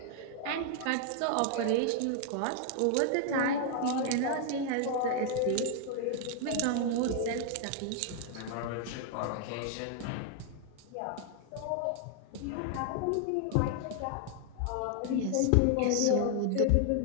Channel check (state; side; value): different; both; correlation 0.00